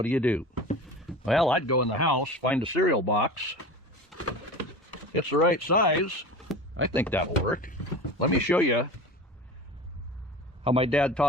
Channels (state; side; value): normal; both; correlation 0.34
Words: do? Well, I'd go in the house, find a cereal box. It's the right size. I think that'll work. Let me show you how my dad